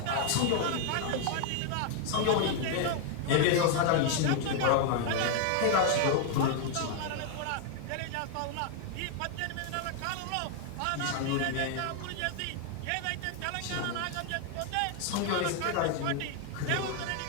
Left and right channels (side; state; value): both; different; correlation 0.00